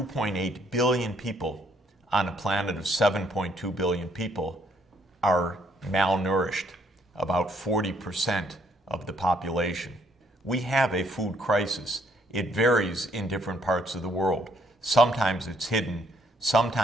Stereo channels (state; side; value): normal; both; correlation 0.69